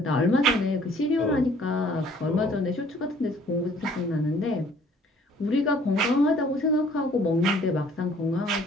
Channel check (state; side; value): normal; both; correlation 0.57